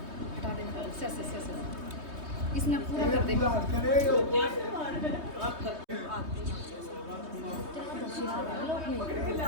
इसने पूरा कर दे।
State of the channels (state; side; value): late; left; 3.2 ms